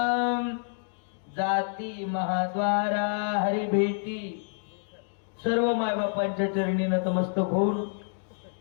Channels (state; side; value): silent; right; 59 dB below the other